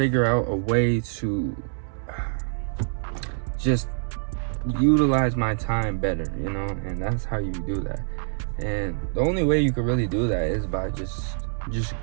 out a way to just utilize my time better, you know? And that's how you do that. And the only way you could really do that is by just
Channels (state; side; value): silent; left; digital silence